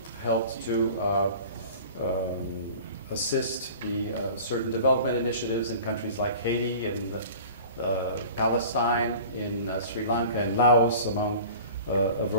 helped to assist the certain development initiatives in countries like Haiti and Palestine, in Sri Lanka and Laos, among a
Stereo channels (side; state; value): both; inverted; correlation -0.42